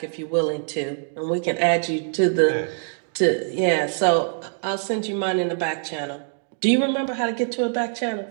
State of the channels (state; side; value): silent; left; 63 dB below the other